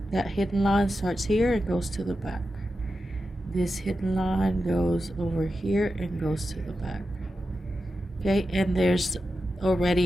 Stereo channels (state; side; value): normal; both; correlation 0.90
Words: that hidden line starts here and goes to the back. This hidden line goes over here and goes to the back. Okay, and there's